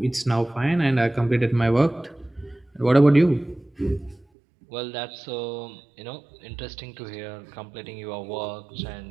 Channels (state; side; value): drops out; left; at 4.2 s